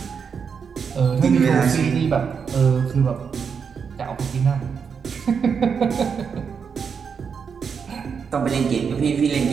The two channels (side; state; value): left; quieter; 6.3 dB